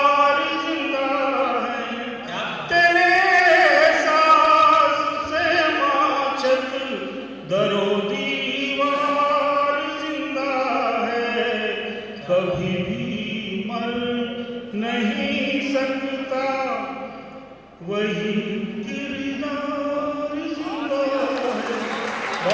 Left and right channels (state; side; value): identical; both; correlation 1.00